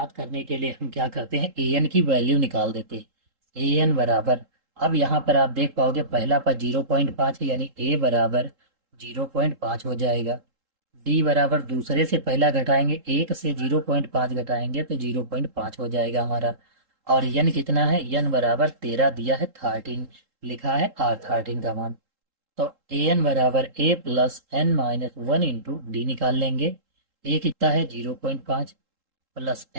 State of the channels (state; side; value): late; left; 3.7 ms